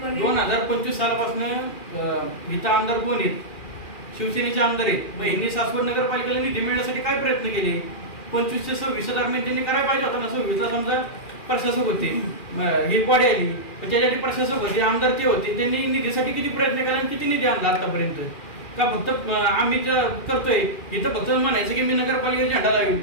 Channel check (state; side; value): late; right; 2.4 ms